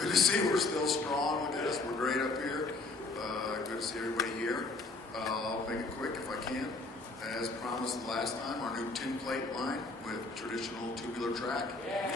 to see we're still strong with this. We're great up here. Good to see everybody here. I'll make it quick if I can. As promised last time, our new tin plate line with traditional tubular track.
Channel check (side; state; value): right; quieter; 3.5 dB